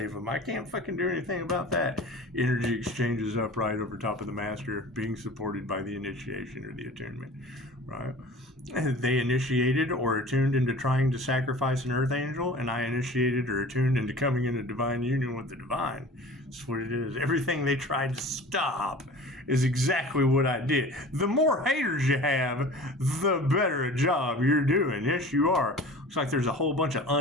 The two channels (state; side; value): normal; both; correlation 0.41